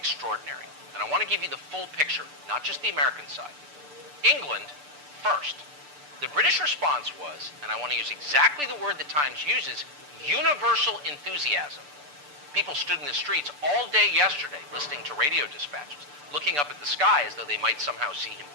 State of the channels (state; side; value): late; left; 6.8 ms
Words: and I want to give you the full picture, not just the American side. England first. The British response was, and I want to use exactly the word the Times uses, universal enthusiasm. People stood in the streets all day yesterday listening to radio dispatches, looking up at the sky as though they might somehow see him